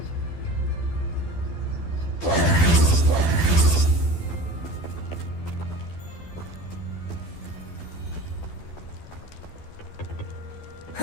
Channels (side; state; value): right; late; 12 ms